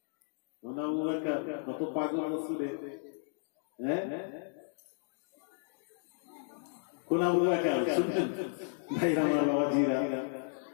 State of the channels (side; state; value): right; silent; digital silence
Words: কত পাগল রাসূলে। হ্যাঁ, কোন আবু বকর শুনছেন ভাইরা আমার বাবাজিরা?